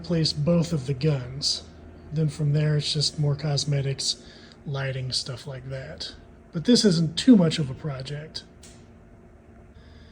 both of the guns. Then from there, it's just more cosmetics, lighting, stuff like that. But this isn't too much of a project.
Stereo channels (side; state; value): both; identical; correlation 1.00